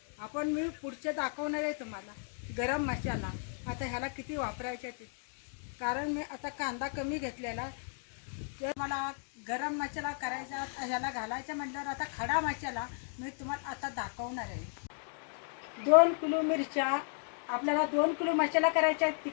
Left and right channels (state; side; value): silent; right; 55 dB below the other